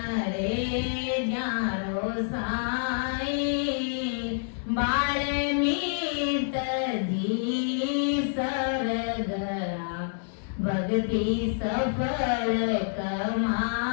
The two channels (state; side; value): silent; right; digital silence